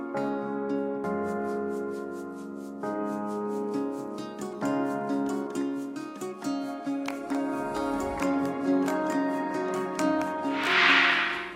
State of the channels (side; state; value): both; identical; correlation 1.00